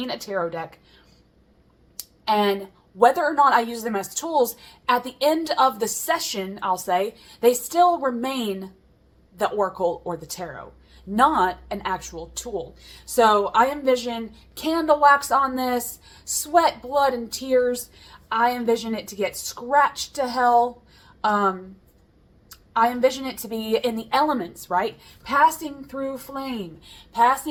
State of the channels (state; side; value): identical; both; correlation 1.00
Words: a tarot deck. And whether or not I use them as tools, at the end of the session, I'll say, they still remain the oracle or the tarot, not an actual tool. So I envision candle wax on this, sweat, blood, and tears. I envision it to get scratched to hell. I envision it to be in the elements, right? Passing through flame,